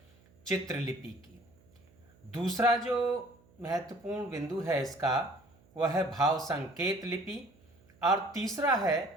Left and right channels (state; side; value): noise; right; hum, 29 dB below the sound